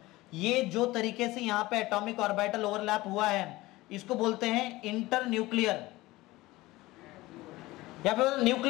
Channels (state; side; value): quieter; right; 19.1 dB